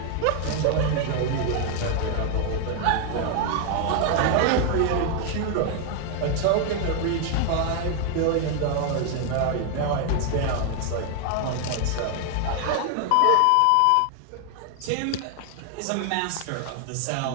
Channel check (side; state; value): both; different; correlation 0.00